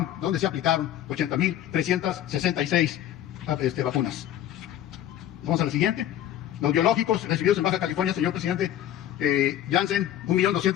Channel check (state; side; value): quieter; right; 11.7 dB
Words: donde se aplicaron 80.366 vacunas. Vamos a la siguiente. Los biológicos recibidos en Baja California, señor presidente, Janssen,